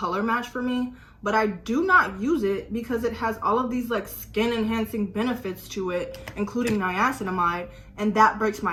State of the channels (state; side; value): identical; both; correlation 1.00